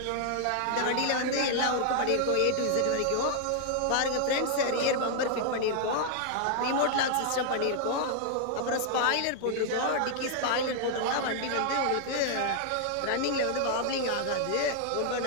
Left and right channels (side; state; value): both; different; correlation 0.00